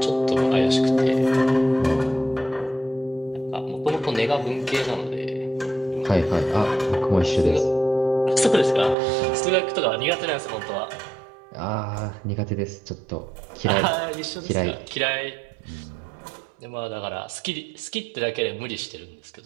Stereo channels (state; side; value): drops out; left; at 9.0 s